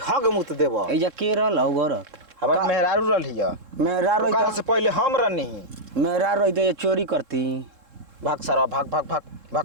हग मुत देबो। एजा के रहल हो गरत हमार मेहरारू रहलिया मेरा ओकरा रही से पहले हम रहनी मेरा रही तो ये चोरी करती। भाग सारा भाग भाग भाग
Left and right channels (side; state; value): left; late; 3.7 ms